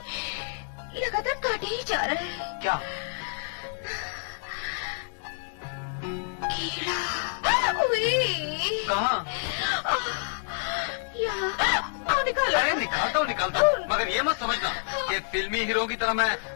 लगातार काटे ही जा रहा है। क्या? कीड़ा। कहाँ? यहाँ निकालो। अरे निकालता हूँ, मगर ये मत समझना कि फिल्मी हीरो की तरह मैं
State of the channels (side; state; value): right; silent; 59 dB below the other